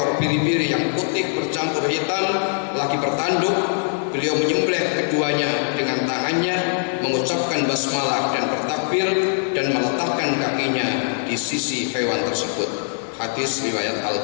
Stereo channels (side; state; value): right; silent; 64 dB below the other